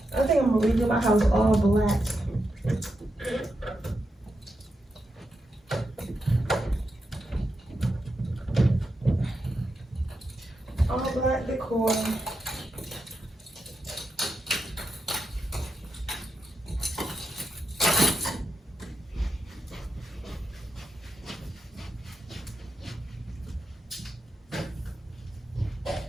I think I'm gonna redo my house all black. All black decor.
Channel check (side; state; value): both; normal; correlation 0.86